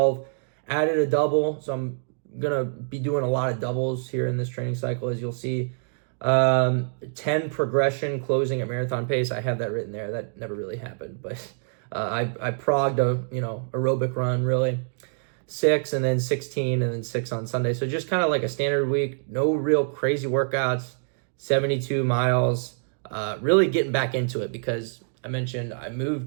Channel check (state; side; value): silent; left; digital silence